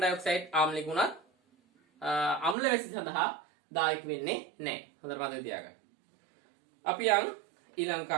ආම්ලික වුණත් අම්ල වැසි සඳහා දායක වෙන්නේ නැහැ. හොඳට මතක තියාගන්න. අපි යන් ඊළඟ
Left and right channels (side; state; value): left; drops out; at 2.6 s